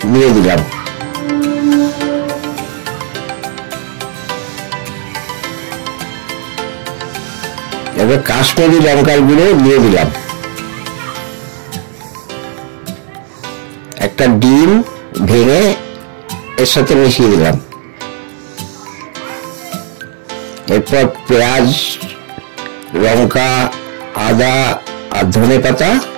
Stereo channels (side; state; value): left; silent; digital silence